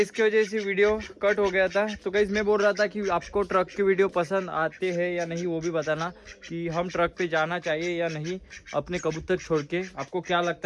वजह से वीडियो कट हो गया था। तो गाइज मैं बोल रहा था कि आपको ट्रक की वीडियो पसंद आते हैं या नहीं वो भी बताना, कि हम ट्रक पे जाना चाहिए या नहीं अपने कबूतर छोड़ के। आपको क्या लगता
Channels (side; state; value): both; identical; correlation 1.00